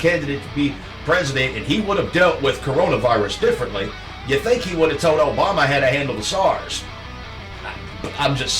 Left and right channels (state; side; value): identical; both; correlation 1.00